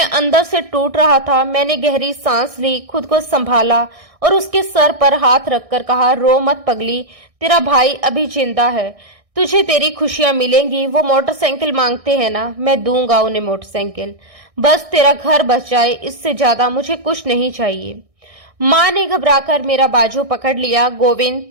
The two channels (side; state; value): left; late; 1.6 ms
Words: अंदर से टूट रहा था। मैंने गहरी सांस ली, खुद को संभाला और उसके सर पर हाथ रखकर कहा, रो मत पगली, तेरा भाई अभी जिंदा है, तुझे तेरी खुशियां मिलेंगी। वो मोटरसाइकिल मांगते हैं ना, मैं दूंगा उन्हें मोटरसाइकिल। बस तेरा घर बच जाए, इससे ज्यादा मुझे कुछ नहीं चाहिए। माँ ने घबराकर मेरा बाजू पकड़ लिया। गोविंद,